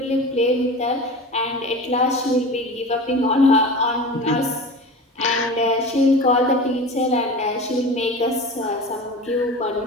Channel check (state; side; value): normal; both; correlation 0.33